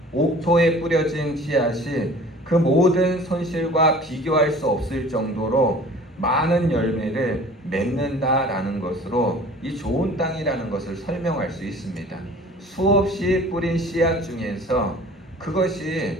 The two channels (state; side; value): normal; both; correlation 0.46